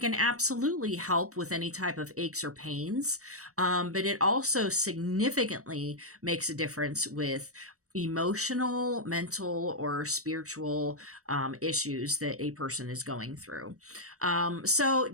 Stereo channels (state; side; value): late; left; 0.65 ms